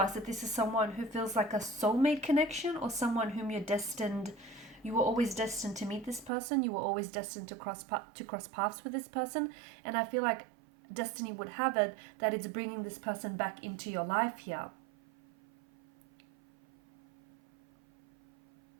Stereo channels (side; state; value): left; drops out; at 6.3 s